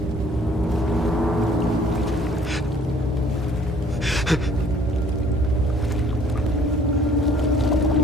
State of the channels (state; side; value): normal; both; correlation 0.58